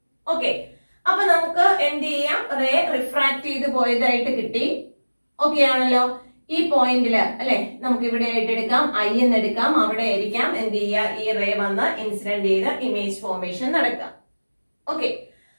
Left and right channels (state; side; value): inverted; both; correlation -1.00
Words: ഓക്കെ, അപ്പൊ നമുക്ക് എന്ത് ചെയ്യാം? റേ റിഫ്രാക്ട് ചെയ്ത് പോയതായിട്ട് കിട്ടി. ഓക്കെ ആണല്ലോ? ഈ പോയിന്റില് അല്ലെ നമുക്ക് ഇവിടെ ആയിട്ട് എടുക്കാം, I എന്ന് എടുക്കാം. അവിടെ ആയിരിക്കാം എന്ത് ചെയ്യുക? ഈ റേ വന്ന് ഇൻസിഡന്റ് ചെയ്ത് ഇമേജ് ഫോർമേഷൻ നടക്കാം. ഓക്കെ,